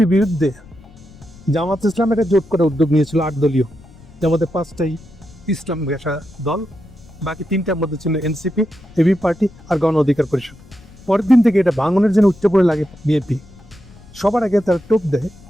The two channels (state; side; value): noise; left; rumble, 22 dB below the sound